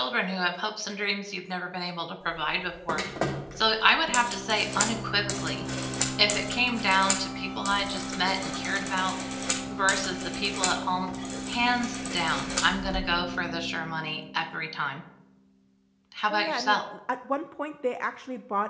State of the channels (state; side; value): identical; both; correlation 1.00